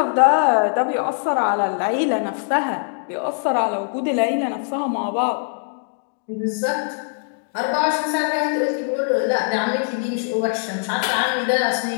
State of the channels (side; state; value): right; silent; digital silence